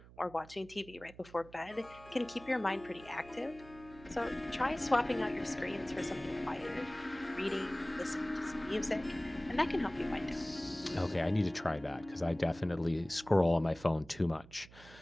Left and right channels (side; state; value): right; noise; hum, 20 dB below the sound